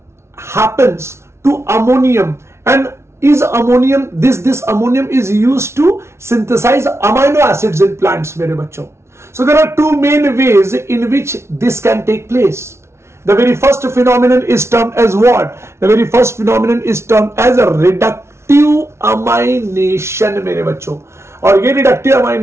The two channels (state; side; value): late; left; 0.13 ms